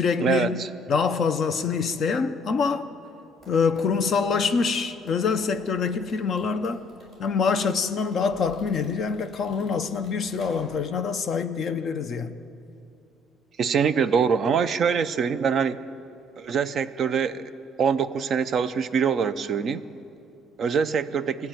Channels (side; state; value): both; normal; correlation 0.59